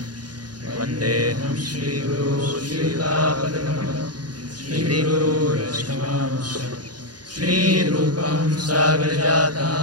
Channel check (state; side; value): late; left; 0.69 ms